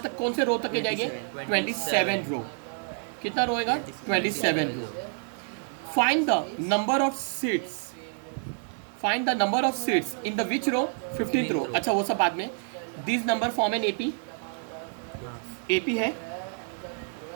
तक, कौन से रो तक के जाएंगे 27 रो। कितना रो होगा 27 row. Find the number of seats, find the number of seats in the which row 15th row. अच्छा वो सब बाद में। This number form an AP, AP है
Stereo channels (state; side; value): silent; left; 59 dB below the other